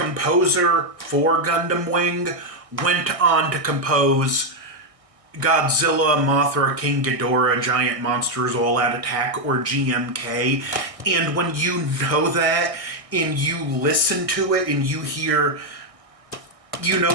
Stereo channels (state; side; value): late; left; 1.6 ms